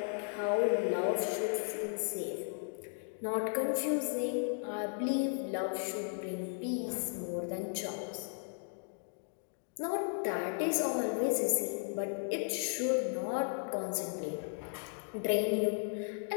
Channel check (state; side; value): silent; right; 54 dB below the other